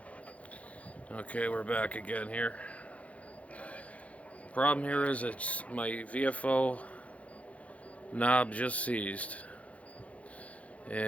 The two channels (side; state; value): right; late; 0.065 ms